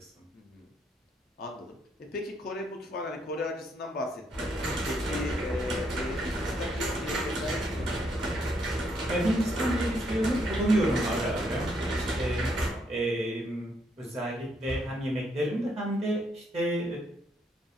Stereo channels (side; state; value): both; normal; correlation 0.74